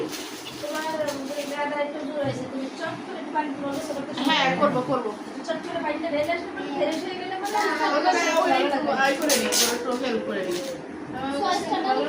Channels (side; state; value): both; identical; correlation 1.00